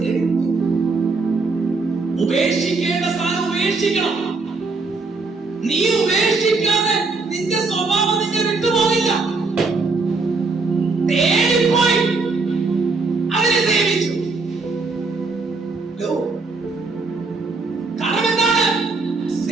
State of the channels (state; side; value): quieter; left; 4.0 dB